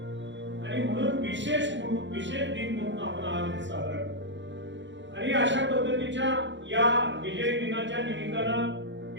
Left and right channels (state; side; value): late; left; 0.53 ms